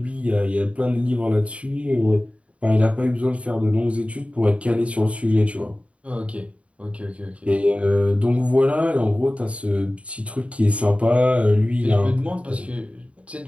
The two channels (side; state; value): left; late; 0.063 ms